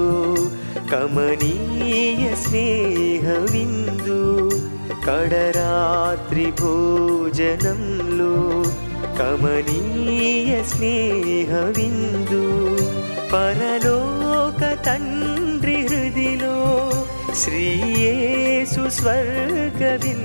కమనీయ స్నేహ విందు కడరాత్రి భోజనంలో కమనీయ స్నేహ విందు పరలోక తండ్రి హృదిలో శ్రీ యేసు స్వర్గ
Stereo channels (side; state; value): both; inverted; correlation -1.00